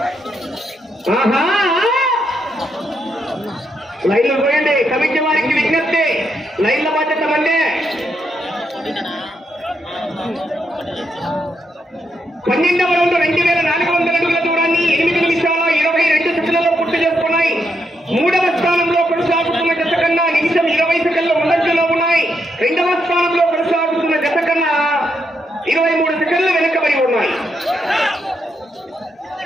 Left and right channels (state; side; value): normal; both; correlation 0.79